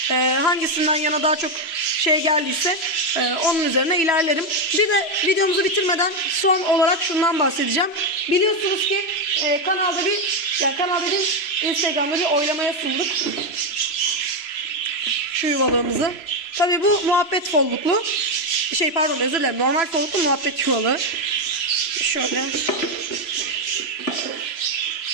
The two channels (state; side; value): late; right; 3.0 ms